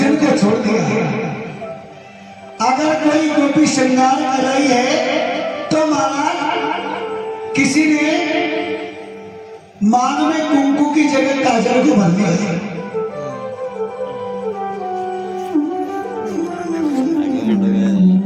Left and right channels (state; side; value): identical; both; correlation 1.00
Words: को छोड़ दिया। अगर कोई गोपी श्रृंगार कर रही है तो महाराज किसी ने मांग में कुंकू की जगह काजल को भर दिया।